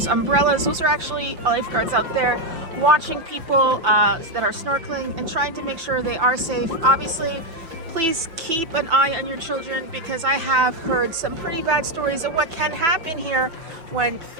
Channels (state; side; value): late; left; 5.8 ms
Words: umbrellas. Those are actually lifeguards out there watching people that are snorkeling and trying to make sure they are safe. Obviously, please keep an eye on your children, because I have heard some pretty bad stories of what can happen here when